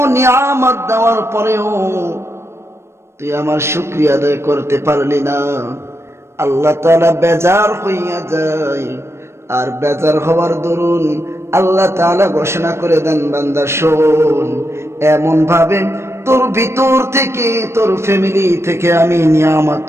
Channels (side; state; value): left; late; 0.13 ms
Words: নিয়ামত দেওয়ার পরেও তুই আমার শুকরিয়া আদায় করতে পারলি না। আল্লাহ তাআলা বেজার হইয়া যায়, আর বেজার হওয়ার দরুন আল্লাহ তাআলা ঘোষণা করে দেন, বান্দা শোন, এমন ভাবে তোর ভিতর থেকে, তোর ফ্যামিলি থেকে আমি নিয়ামত